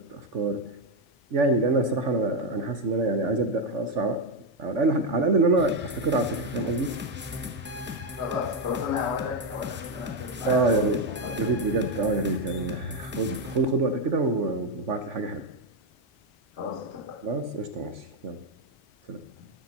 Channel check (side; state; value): both; normal; correlation 0.06